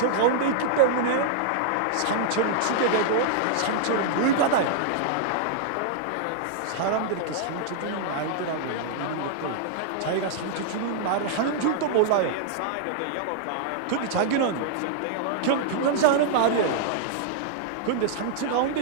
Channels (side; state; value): both; different; correlation -0.01